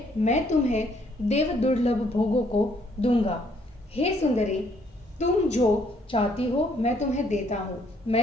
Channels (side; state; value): both; normal; correlation 0.67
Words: मैं तुम्हें देव दुर्लभ भोगों को दूंगा। हे सुंदरी, तुम जो चाहती हो मैं तुम्हें देता हूँ।